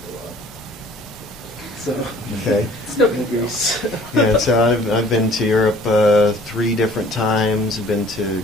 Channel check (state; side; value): normal; both; correlation 0.52